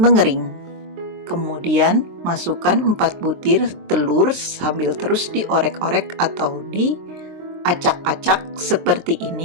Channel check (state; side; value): late; left; 23 ms